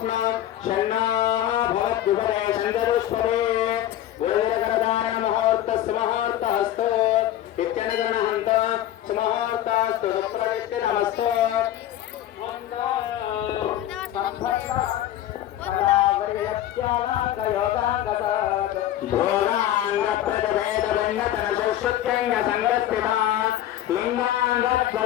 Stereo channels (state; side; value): quieter; right; 12.6 dB